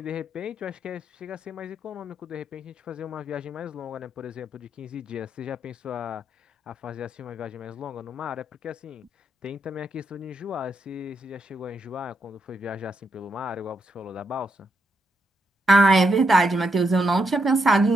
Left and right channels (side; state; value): both; normal; correlation 0.80